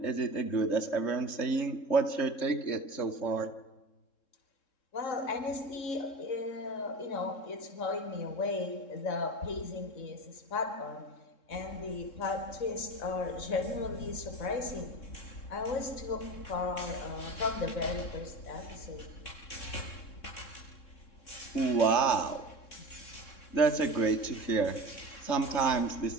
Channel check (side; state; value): right; late; 3.7 ms